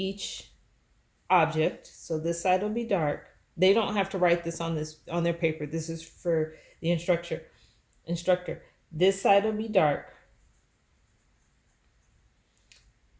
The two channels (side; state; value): both; identical; correlation 1.00